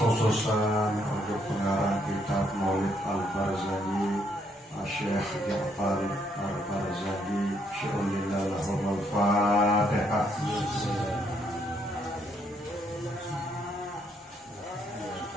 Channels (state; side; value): normal; both; correlation 0.72